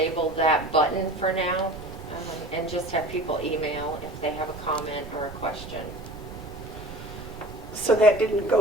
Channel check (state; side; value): noise; right; rumble, 13 dB below the sound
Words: that button for now, and just have people email if they have a comment or a question. So that didn't